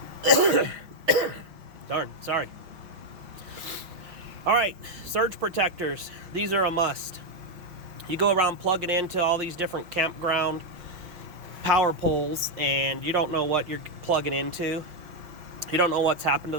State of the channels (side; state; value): left; late; 5.8 ms